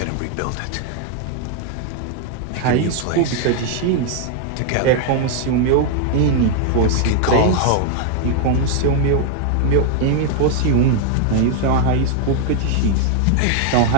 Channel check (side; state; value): both; different; correlation 0.00